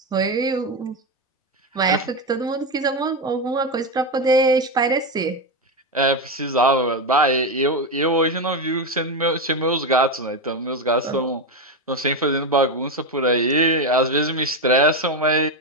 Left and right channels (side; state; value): both; normal; correlation 0.12